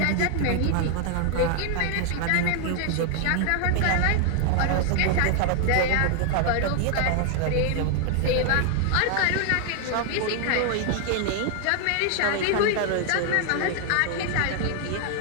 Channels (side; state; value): both; different; correlation 0.00